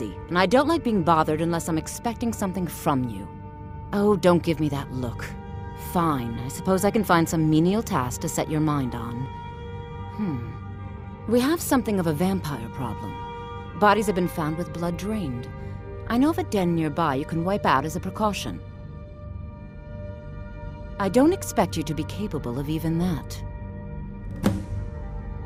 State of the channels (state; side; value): identical; both; correlation 1.00